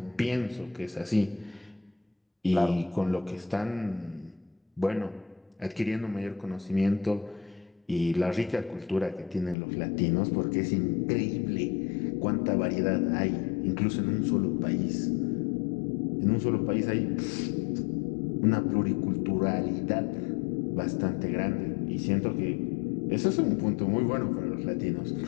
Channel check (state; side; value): drops out; right; at 9.6 s